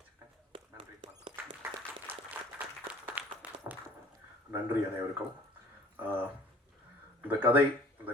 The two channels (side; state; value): both; normal; correlation 0.51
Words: நன்றி. நன்றி அனைவருக்கும். இந்த